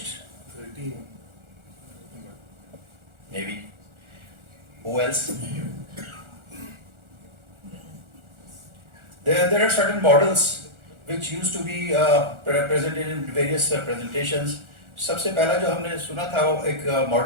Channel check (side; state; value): left; late; 1.4 ms